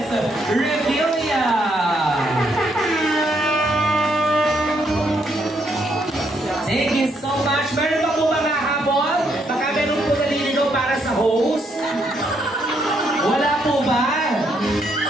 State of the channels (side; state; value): both; normal; correlation 0.74